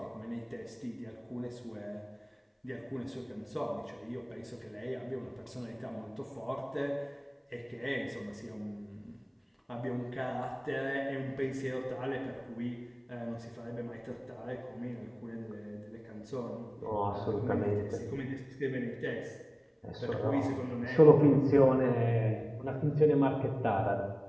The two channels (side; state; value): both; identical; correlation 1.00